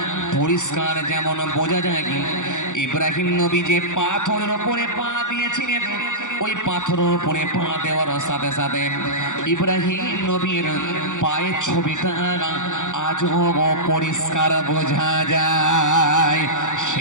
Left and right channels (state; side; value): late; right; 0.86 ms